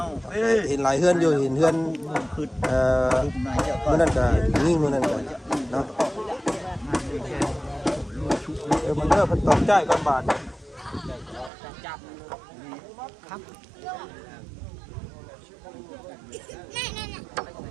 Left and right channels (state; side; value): drops out; left; at 11.5 s